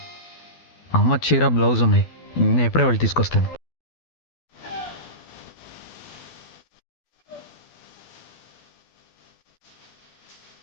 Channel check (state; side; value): late; right; 12 ms